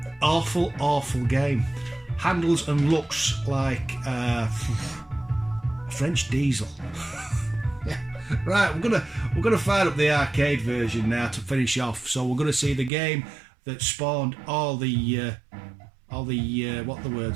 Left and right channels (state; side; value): drops out; left; at 12.9 s